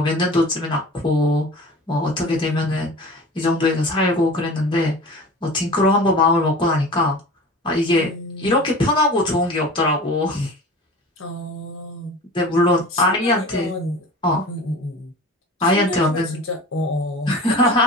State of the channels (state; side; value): normal; both; correlation 0.38